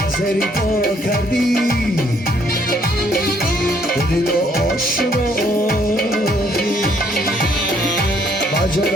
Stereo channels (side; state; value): both; normal; correlation 0.66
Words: زری پا کردی دل آشنا با